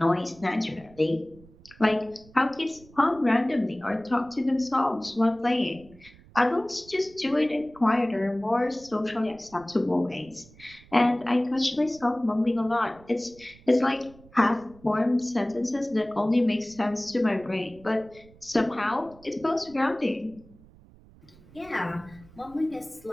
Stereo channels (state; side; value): noise; right; rumble, 24 dB below the sound